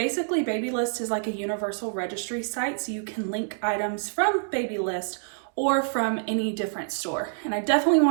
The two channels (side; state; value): left; silent; digital silence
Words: Babylist is like a universal registry site, so you can link items from Babylist or from any different store. And I definitely